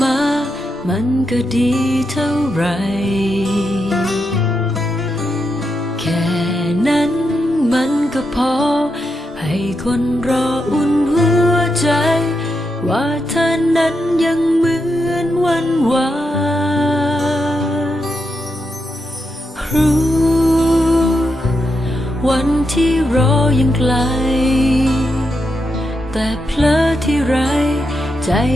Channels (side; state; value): both; normal; correlation 0.84